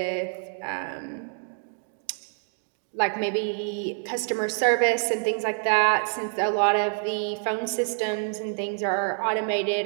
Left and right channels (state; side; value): silent; left; 60 dB below the other